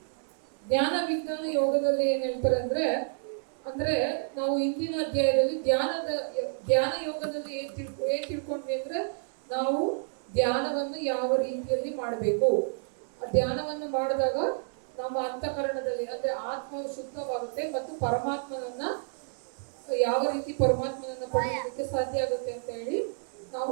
ಜ್ಞಾನ ವಿಜ್ಞಾನ ಯೋಗದಲ್ಲಿ ಏನ್ ಹೇಳ್ತಾರೆ ಅಂದ್ರೆ ನಾವು ಇಂದಿನ ಅಧ್ಯಾಯದಲ್ಲಿ ಧ್ಯಾನ ಯೋಗದಲ್ಲಿ ಏನ್ ತಿಳ್ಕೊಂಡ್ವಿ ಅಂದ್ರೆ ನಾವು ಧ್ಯಾನವನ್ನು ಯಾವ ರೀತಿಯಲ್ಲಿ ಮಾಡಬೇಕು. ಧ್ಯಾನವನ್ನು ಮಾಡಿದಾಗ ನಮ್ಮ ಅಂತಃಕರಣದಲ್ಲಿ ಅಂದ್ರೆ ಆತ್ಮವು ಶುದ್ಧವಾಗುತ್ತೆ ಮತ್ತು ಪರಮಾತ್ಮನನ್ನ ಯಾವ ರೀತಿ ಪರಮಾತ್ಮನನ್ನ ಪಡೆಯೋದಕ್ಕೆ ಸಾಧ್ಯ ಆಗುತ್ತೆ ಅಂತ ಹೇಳಿ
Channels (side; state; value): left; silent; 56 dB below the other